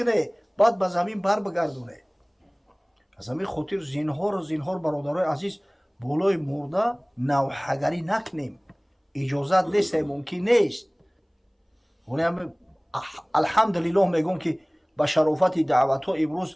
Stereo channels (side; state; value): both; identical; correlation 1.00